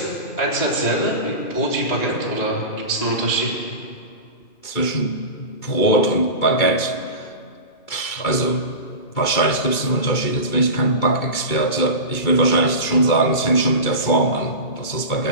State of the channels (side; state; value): right; late; 2.3 ms